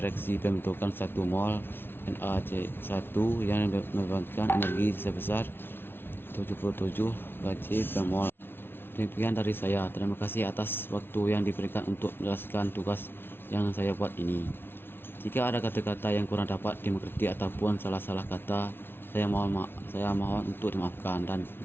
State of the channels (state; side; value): late; right; 0.11 ms